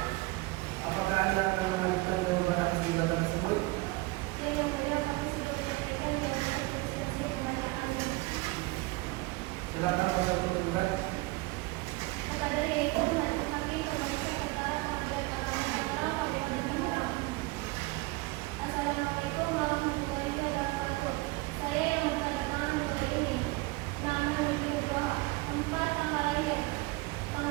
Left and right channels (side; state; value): left; quieter; 22.6 dB